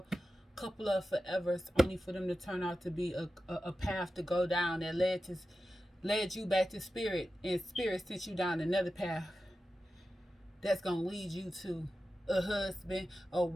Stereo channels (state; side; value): normal; both; correlation 0.92